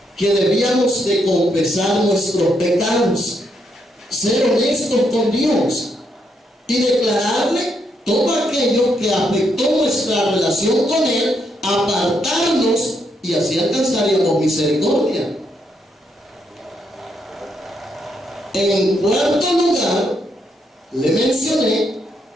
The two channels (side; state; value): both; normal; correlation 0.77